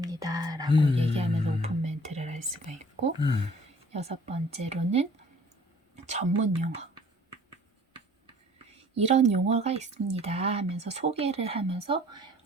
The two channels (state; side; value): normal; both; correlation 0.53